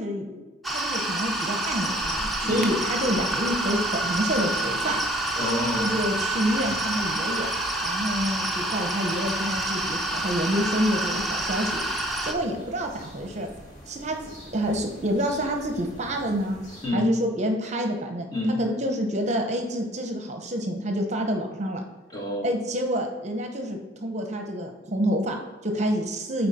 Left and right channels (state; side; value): normal; both; correlation 0.55